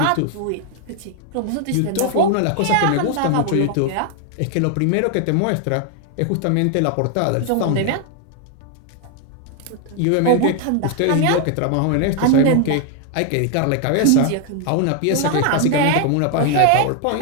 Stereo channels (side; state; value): both; different; correlation 0.00